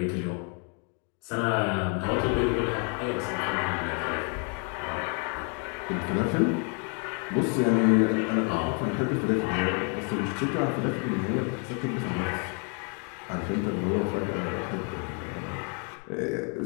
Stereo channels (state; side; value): quieter; right; 38.9 dB